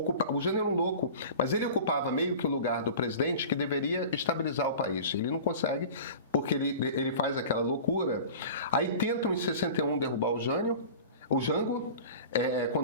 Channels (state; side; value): inverted; both; correlation -0.38